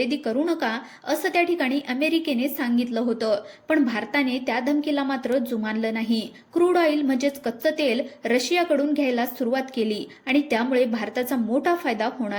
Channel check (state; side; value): identical; both; correlation 1.00